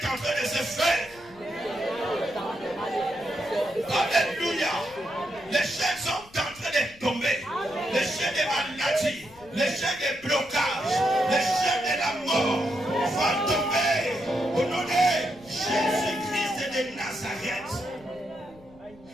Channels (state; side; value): noise; left; rumble, 25 dB below the sound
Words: en train de se faire. Alléluia. Les chaînes sont en train de tomber. Les chaînes de maladie, les chaînes de blocage, les chaînes de la mort vont tomber au nom de Jésus-Christ de Nazareth.